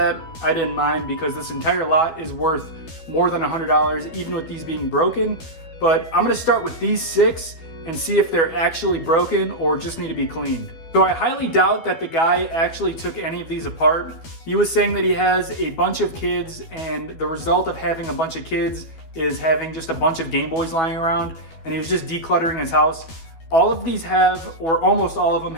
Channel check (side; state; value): right; late; 12 ms